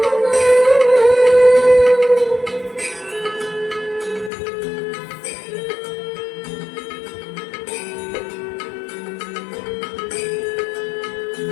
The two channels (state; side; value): drops out; right; at 4.3 s